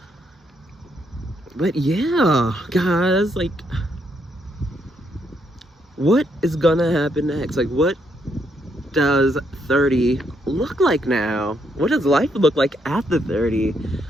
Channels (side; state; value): both; normal; correlation 0.75